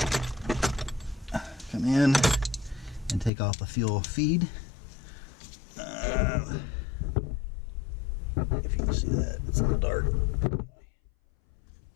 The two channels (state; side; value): drops out; right; at 3.3 s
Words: come in and take off the fuel feed. If you can see that, it's a little dark.